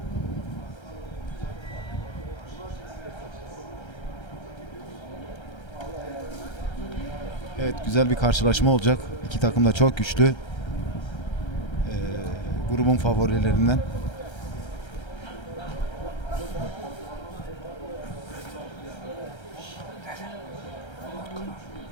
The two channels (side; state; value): right; late; 1.3 ms